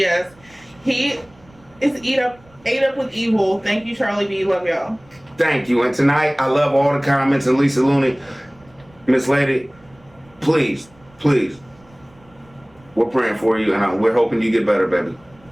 He is ate up with evil. Thank you, Charlie B. Love y'all. Thank you. And tonight, I love all the comments. And Lisa Looney, Miss Lady, please, we're praying for you, and we're hoping you get better, baby.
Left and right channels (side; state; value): right; noise; rumble, 29 dB below the sound